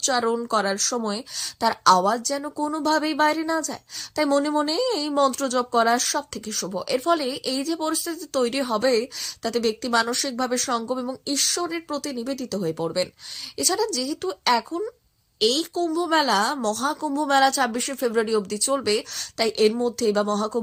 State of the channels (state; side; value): identical; both; correlation 1.00